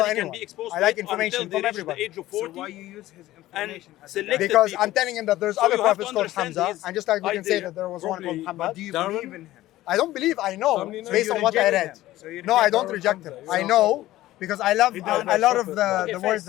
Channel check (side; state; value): right; quieter; 15.7 dB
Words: Nobody can anyone. be exposed I to like it information until from they reach everybody. the age of So 40. why you use his And information as select a Because people. I'm telling him that there's So other you have to prophets called understand Hamza, his and just like we can say idea that there was one called properly. Muhammad. do you Darwin? believe in him? I don't believe. I know So based you on what I reject read. him. So you No, I reject don't Darwin reject Hamza. him. You I don't know because I love a lot of the Okay, words first,